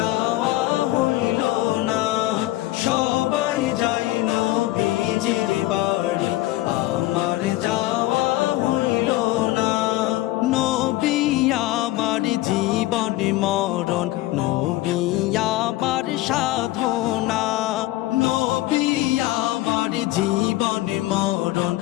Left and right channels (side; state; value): right; quieter; 17.3 dB